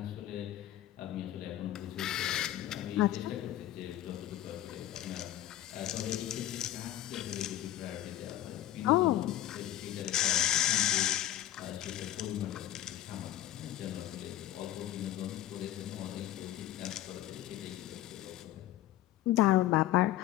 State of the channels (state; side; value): quieter; right; 13.4 dB